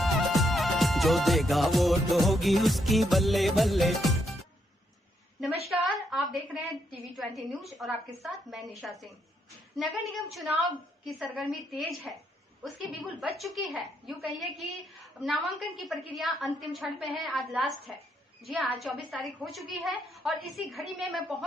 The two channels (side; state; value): both; normal; correlation 0.77